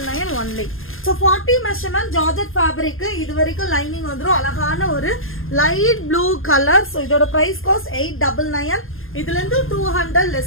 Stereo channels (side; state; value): right; late; 0.60 ms